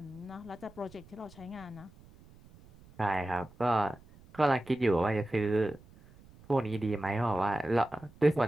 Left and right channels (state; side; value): noise; right; rumble, 24 dB below the sound